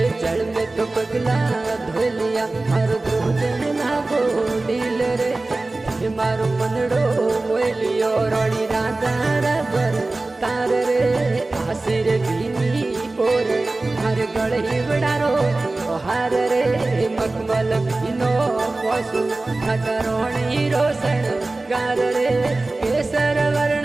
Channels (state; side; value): quieter; left; 3.1 dB